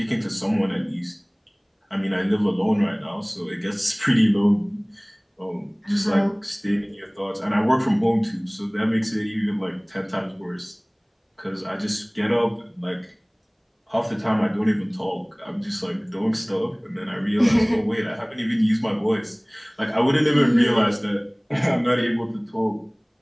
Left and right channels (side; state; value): both; identical; correlation 1.00